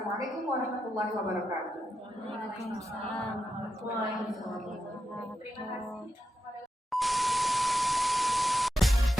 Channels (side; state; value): both; normal; correlation 0.87